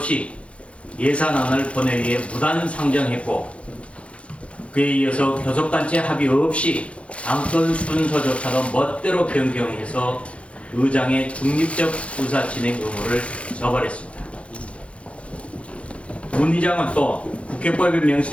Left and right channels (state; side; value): late; right; 0.062 ms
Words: 예산안을 본회의에 무단 상정했고, 그에 이어서 교섭단체 합의 없이 안건 순서조차도 멋대로 변경해서 의장의 중립적 의사 진행 의무를 저버렸습니다. 문 의장은 또 국회법에